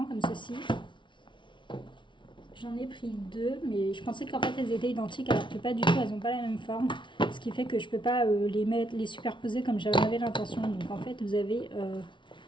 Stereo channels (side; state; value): right; late; 0.24 ms